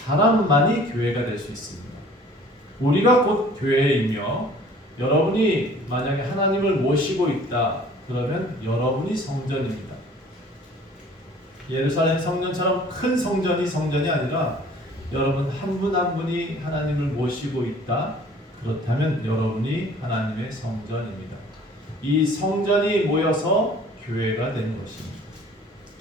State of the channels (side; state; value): both; normal; correlation 0.51